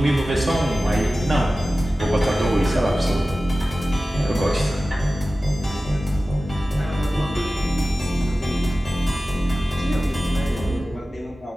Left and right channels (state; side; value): normal; both; correlation 0.95